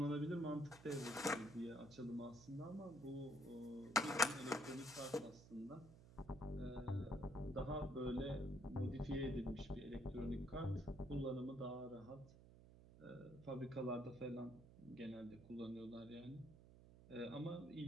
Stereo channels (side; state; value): right; noise; hum, 18 dB below the sound